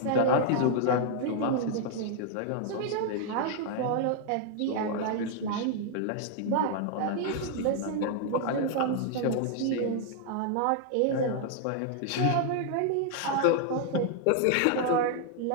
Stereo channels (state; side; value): different; both; correlation 0.00